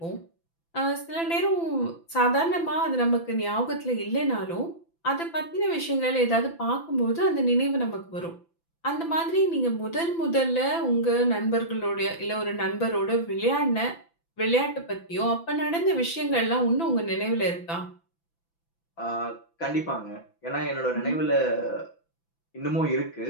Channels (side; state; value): right; late; 5.9 ms